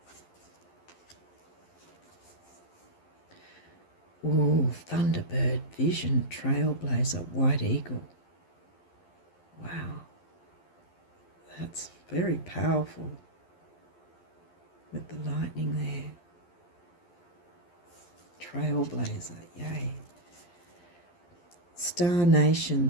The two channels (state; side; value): late; right; 11 ms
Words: Ooh, Thunderbird, vision, trailblazer, white eagle. Wow. That's very powerful with the lightning there. Trailblazer, yay. Star